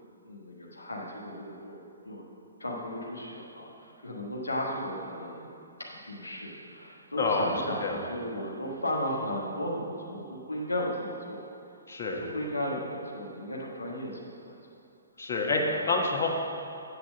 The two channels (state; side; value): inverted; both; correlation -0.48